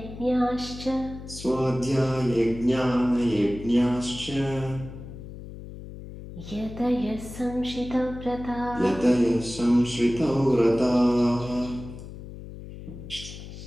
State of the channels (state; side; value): noise; left; hum, 13 dB below the sound